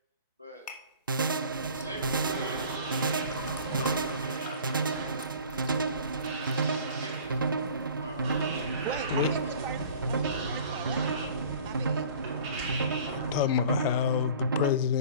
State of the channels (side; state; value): both; inverted; correlation -0.45